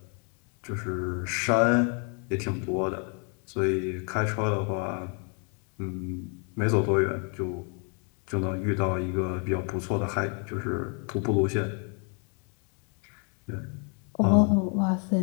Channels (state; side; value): quieter; right; 38.3 dB